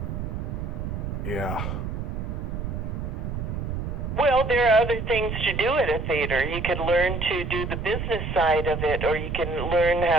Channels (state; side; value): noise; right; rumble, 4 dB below the sound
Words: Yeah. Well, there are other things to do at a theater. You could learn to do the business side of it, or you can learn